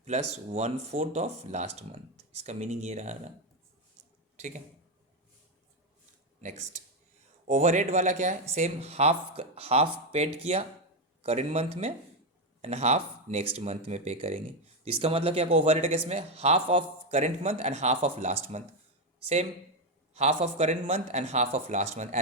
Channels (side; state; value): both; normal; correlation 0.08